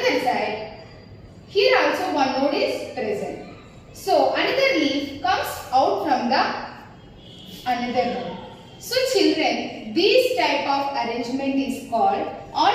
side. Here also one node is present. So, another leaf comes out from the another node. So, children, this type of arrangement is called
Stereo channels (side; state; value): both; identical; correlation 1.00